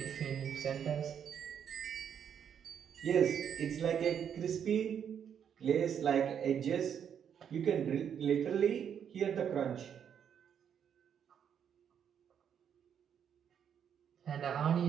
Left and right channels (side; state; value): left; quieter; 8.3 dB